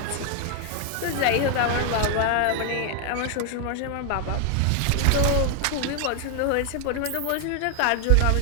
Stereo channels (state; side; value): different; both; correlation 0.00